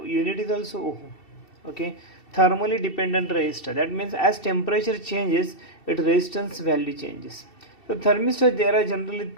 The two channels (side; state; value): right; late; 2.7 ms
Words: unit is also ohm. Okay, thermally dependent resistor, that means as temperature changes its resistance value changes. So thermistor, there are generally